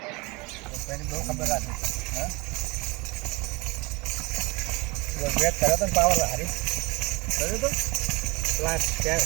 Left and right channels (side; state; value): left; quieter; 25.3 dB